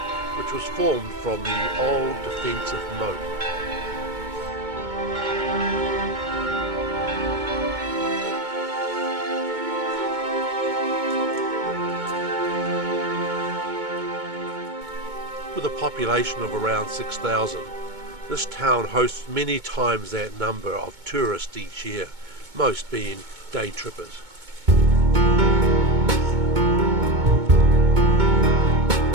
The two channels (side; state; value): left; late; 2.2 ms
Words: which was formed from the old defensive moat. With a population of around 6,000, this town hosts many times that number of tourists each year, most being day trippers.